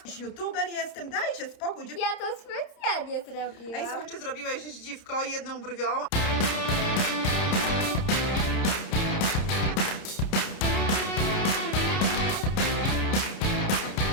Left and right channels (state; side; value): late; right; 30 ms